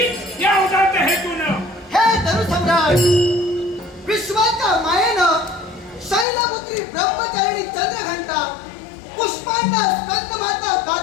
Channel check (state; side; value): drops out; right; at 6.2 s